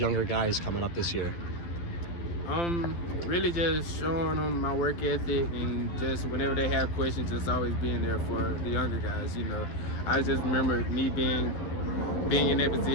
guys coming up this year? Really just showing them my work ethic, and just whenever they have questions, just always being there for the younger guys. You know, I just remember me being in that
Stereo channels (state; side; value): late; right; 12 ms